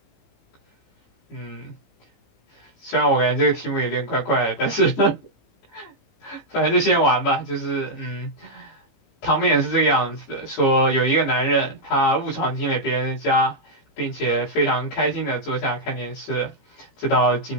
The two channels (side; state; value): right; late; 18 ms